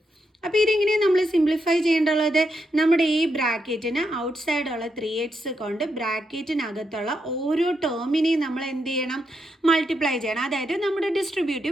അപ്പോൾ ഇതെങ്ങനെയാണ് നമ്മൾ സിംപ്ലിഫൈ ചെയ്യേണ്ടുള്ളത്? നമ്മുടെ ഈ ബ്രാക്കറ്റിന് ഔട്ട് സൈഡുള്ള 3x കൊണ്ട് ബ്രാക്കറ്റിനകത്തുള്ള ഓരോ ടേമിനെയും നമ്മൾ എന്ത് ചെയ്യണം? മൾട്ടിപ്ലൈ ചെയ്യണം. അതായത് നമ്മുടെ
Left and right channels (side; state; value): both; normal; correlation 0.82